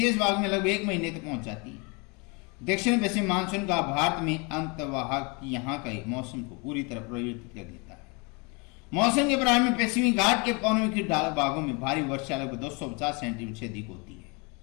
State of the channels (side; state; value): right; quieter; 30.6 dB